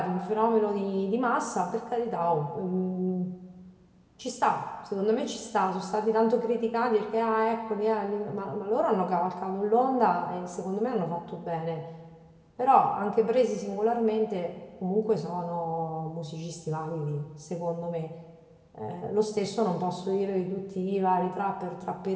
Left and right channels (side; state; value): both; identical; correlation 1.00